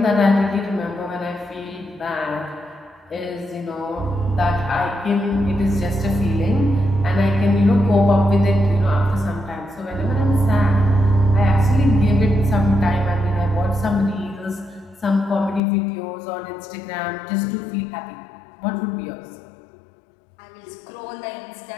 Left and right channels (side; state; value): right; drops out; at 15.6 s